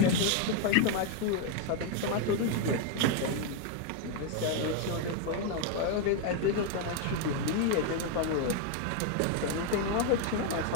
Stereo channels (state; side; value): different; both; correlation 0.01